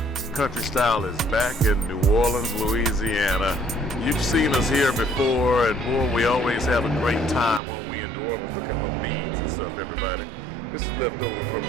Country Style is back in New Orleans, Louisiana. You've seen us here before, and boy, we always have a great time when we in New Orleans. Look at my beads and stuff, everybody. This is left over from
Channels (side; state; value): left; drops out; at 7.6 s